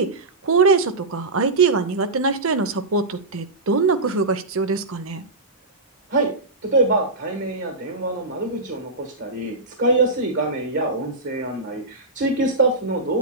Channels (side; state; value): left; quieter; 3.1 dB